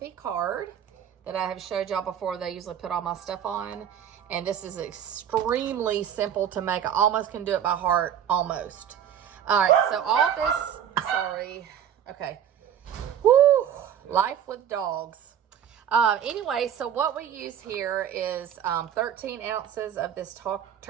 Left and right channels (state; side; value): quieter; left; 9.3 dB